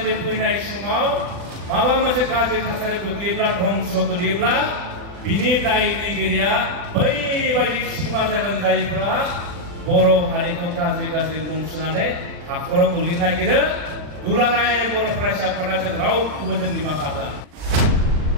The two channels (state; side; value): late; left; 40 ms